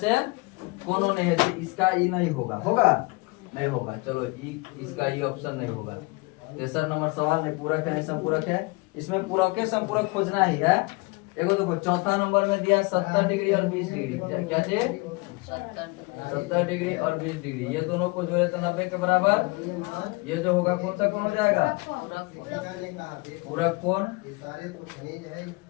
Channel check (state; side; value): quieter; right; 26.7 dB